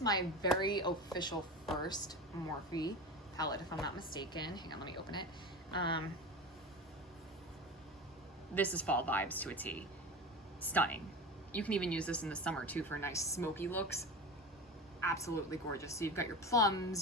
my very official first Morphe palette, if I'm not mistaken. Hang on, let me open it. This is fall vibes to a T. Stunning. You can even use this in the summer too for nice smoky looks. Absolutely gorgeous. So you've got your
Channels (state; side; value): normal; both; correlation 0.29